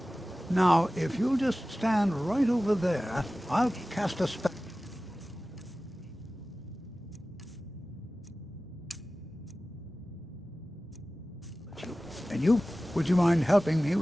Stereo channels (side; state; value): both; normal; correlation 0.96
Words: Now, if you'll just stand right over there, I'll cast a spell. And And you, would you mind helping me